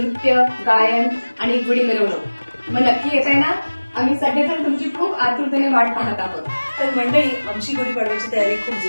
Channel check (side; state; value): both; inverted; correlation -1.00